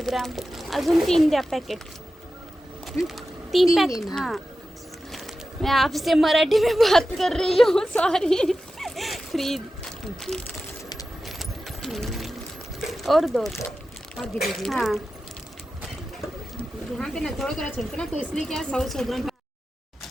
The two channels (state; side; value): normal; both; correlation 0.93